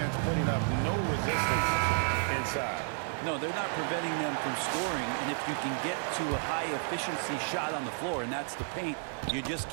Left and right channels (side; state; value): left; silent; 57 dB below the other